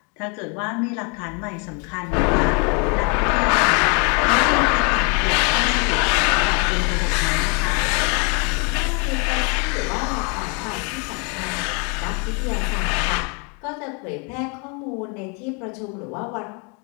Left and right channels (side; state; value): right; quieter; 34.5 dB